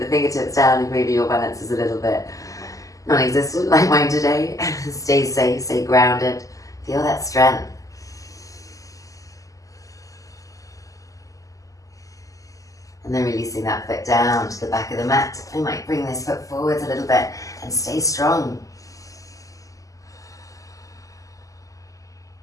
fingertips down if maybe your balance is a little bit non-existent like mine today. Stay safe, stay grounded. Feel that strength. And then releasing that foot down to the back of the mat. I might bring this foot forwards a little bit and stay strong.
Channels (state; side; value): late; right; 0.16 ms